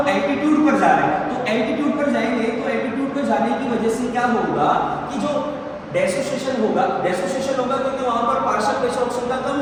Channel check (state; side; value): identical; both; correlation 1.00